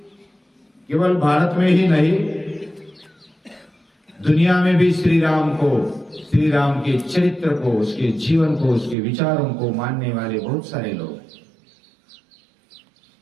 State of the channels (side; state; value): left; drops out; at 9.0 s